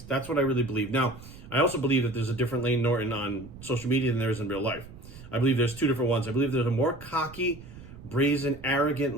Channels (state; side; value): noise; right; rumble, 17 dB below the sound